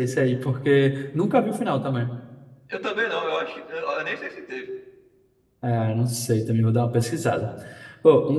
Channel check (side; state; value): both; identical; correlation 1.00